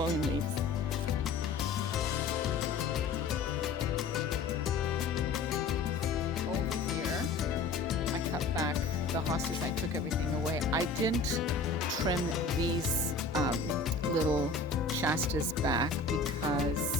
leaves. Over here, I cut back the hostas. I took everything away. I didn't trim these little Shastas back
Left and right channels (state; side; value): quieter; right; 4.0 dB